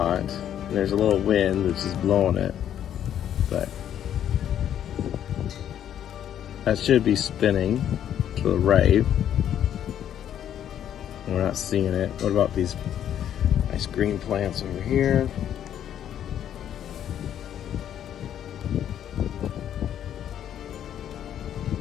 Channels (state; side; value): quieter; right; 10.2 dB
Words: And there's a little wind which is blowing it, but that should be spinning to the right. We're not seeing it. What about these nice green plants over here?